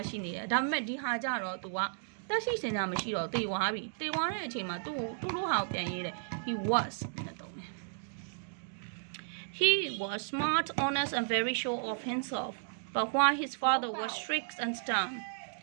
ရှိနေတယ်ဒါပေမဲ့ဒီဟာကြတော့သူကတက်ရှိစင်ညာမရှိတော့တေဝါပြီတေဝါတဲ့အချိန်မှာသူတို့ဟာကိုပြန်ရေးတယ် he was နဲ့တုံးတယ် He was smart, honest, and very sure of himself. But while his father was strict and stern,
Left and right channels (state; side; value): silent; left; digital silence